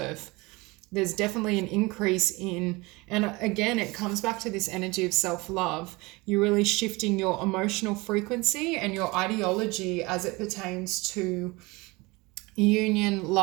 There's definitely an increase in, and again, it comes back to this energy of self-love. You're really shifting your emotional frequency and your ideology as it pertains to union,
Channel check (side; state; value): left; quieter; 23.8 dB